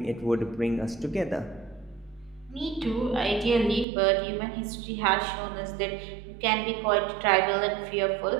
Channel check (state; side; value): drops out; left; at 3.9 s